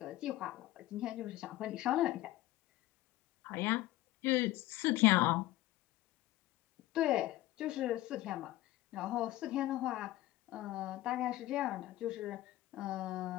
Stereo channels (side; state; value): right; quieter; 16.4 dB